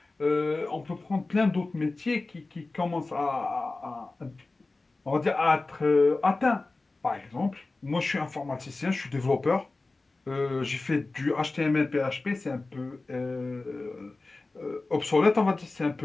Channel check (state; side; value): quieter; right; 3.4 dB